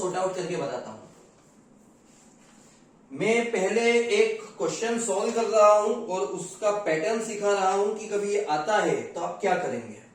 आउट करके बताता हूं। मैं पहले एक क्वेश्चन सॉल्व कर रहा हूं और उसका पैटर्न सिखा रहा हूं कि कभी ये आता है तो आप क्या करेंगे।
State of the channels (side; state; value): both; identical; correlation 1.00